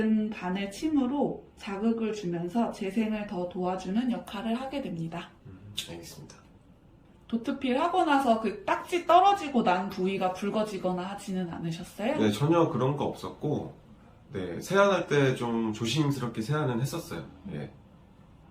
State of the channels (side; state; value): both; identical; correlation 1.00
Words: 바늘 침으로 자극을 주면서 재생을 더 도와주는 역할을 하게 됩니다. 알겠습니다. 도트필 하고 나서 그 딱지 떨어지고 난 부위가 붉어지거나 하지는 않으셨어요? 네, 전혀 그런 거 없었고, 네, 세안할 때 좀 조심스럽게 세안은 했었어요. 네.